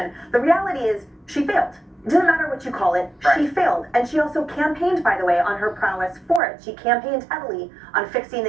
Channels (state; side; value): drops out; left; at 6.4 s